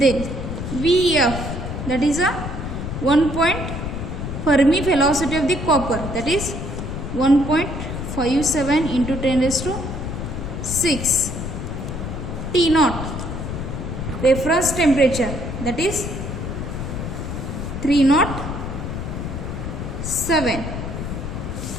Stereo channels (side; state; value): left; noise; rumble, 5 dB below the sound